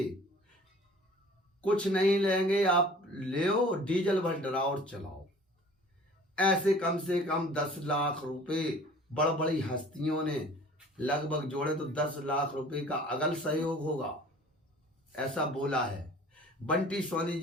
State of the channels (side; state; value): both; normal; correlation 0.48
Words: कुछ नहीं लेंगे आप ले डीजल भर डराओ और चलाओ, ऐसे कम से कम 10 लाख रुपए बड़ बड़ी हस्तियों ने लगभग जोड़े तो 10 लाख रुपए का अगल सहयोग होगा, ऐसा बोला है। बंटी सोनी